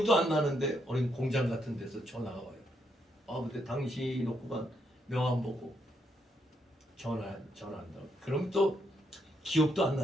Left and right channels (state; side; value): normal; both; correlation 0.77